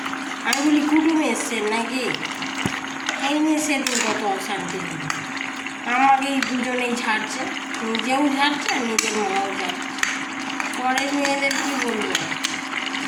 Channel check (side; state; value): both; identical; correlation 1.00